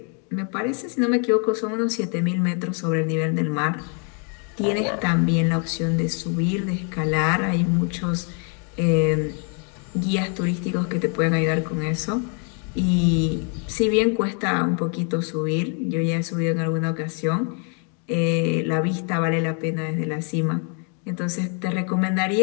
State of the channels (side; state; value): right; quieter; 39.7 dB